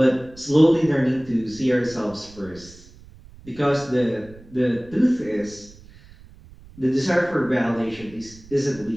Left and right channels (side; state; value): right; noise; rumble, 22 dB below the sound